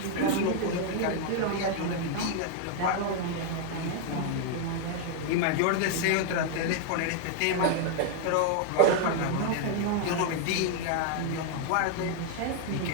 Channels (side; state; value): both; different; correlation 0.00